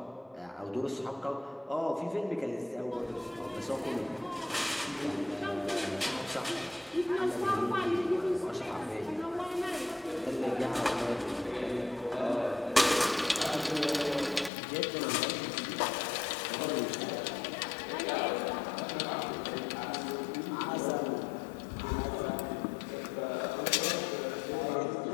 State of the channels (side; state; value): right; drops out; at 14.5 s